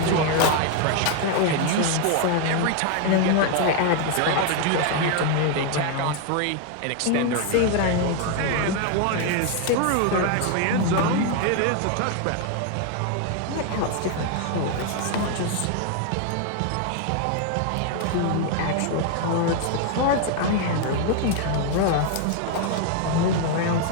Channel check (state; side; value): different; both; correlation 0.00